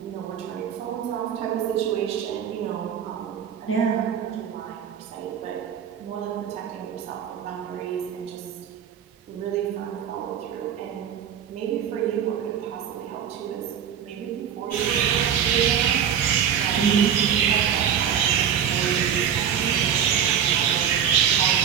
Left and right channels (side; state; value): left; quieter; 8.7 dB